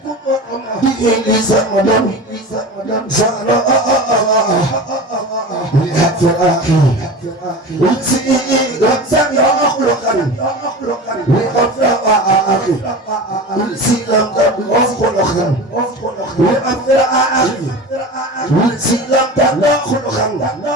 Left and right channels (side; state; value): both; normal; correlation 0.31